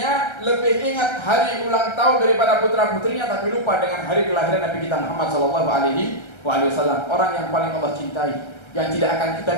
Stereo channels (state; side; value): late; right; 1.3 ms